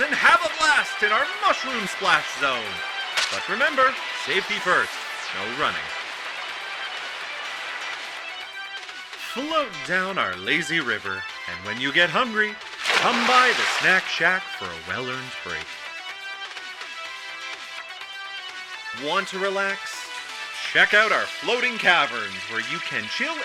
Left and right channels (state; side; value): identical; both; correlation 1.00